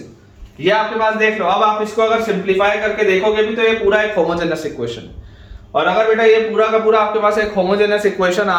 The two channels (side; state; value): both; identical; correlation 1.00